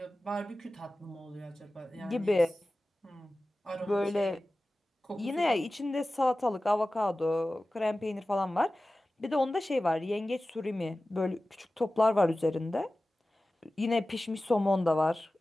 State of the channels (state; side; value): normal; both; correlation 0.96